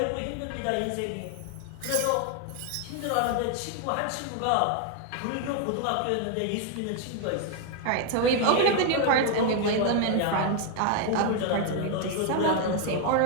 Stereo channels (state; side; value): different; both; correlation 0.00